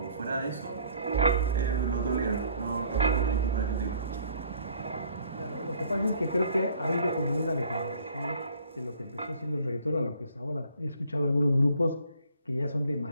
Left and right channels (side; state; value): both; inverted; correlation -0.58